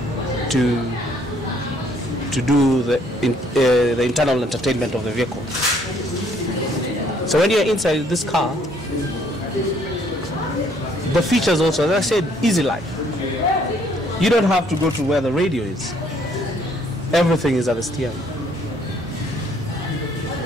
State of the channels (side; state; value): both; normal; correlation 0.64